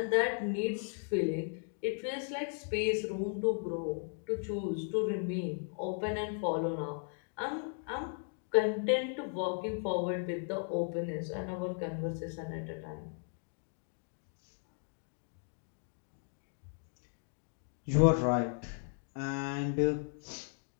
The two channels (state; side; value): silent; right; 54 dB below the other